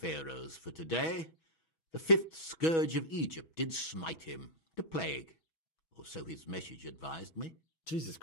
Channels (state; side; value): late; right; 6.2 ms